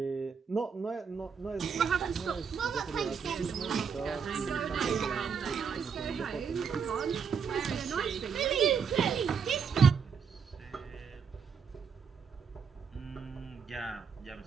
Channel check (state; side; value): quieter; left; 6.3 dB